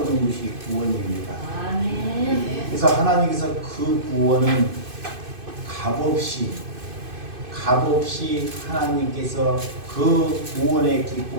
것이 구원입니다. 그래서 하나님께서 그 구원은 값없이 하나님께서 그 구원의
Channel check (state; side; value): late; left; 2.5 ms